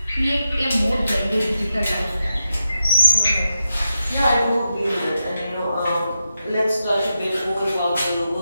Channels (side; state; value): both; inverted; correlation -0.88